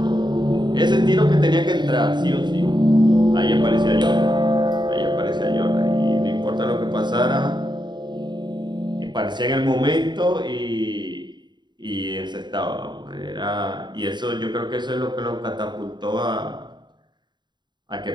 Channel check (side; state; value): left; late; 0.22 ms